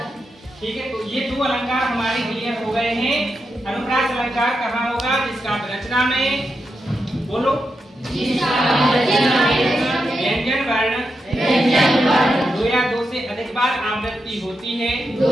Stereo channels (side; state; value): both; normal; correlation 0.86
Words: ठीक है। तो ये दो अलंकार हमारे क्लियर हो गए हैं। अनुप्रास अलंकार कहाँ होगा? जिसका रचना में, बोलो, व्यंजन वर्ण दो या दो से अधिक बार आवृत्ति होती है,